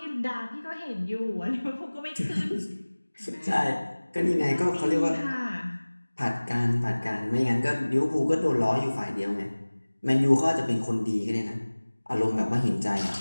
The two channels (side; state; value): both; inverted; correlation -1.00